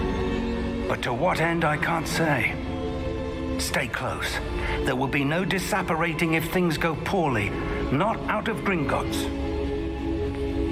But to what end, I can't say. Stay close. There will be no disapparating if things go poorly. Not out of Gringotts.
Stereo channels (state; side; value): identical; both; correlation 1.00